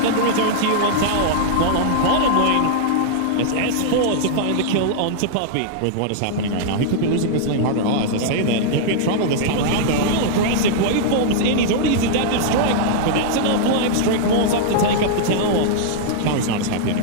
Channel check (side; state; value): both; different; correlation -0.01